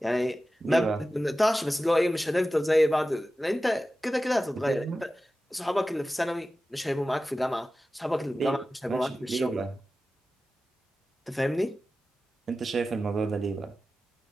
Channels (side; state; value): both; normal; correlation 0.95